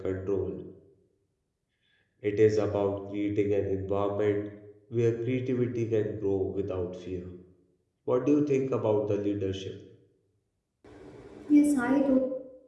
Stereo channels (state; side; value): identical; both; correlation 1.00